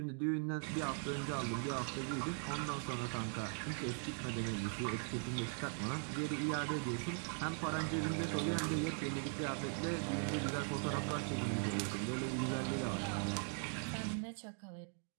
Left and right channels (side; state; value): left; silent; 51 dB below the other